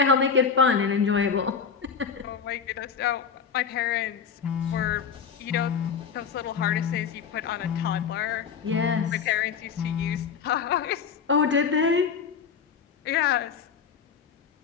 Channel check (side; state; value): right; quieter; 6.5 dB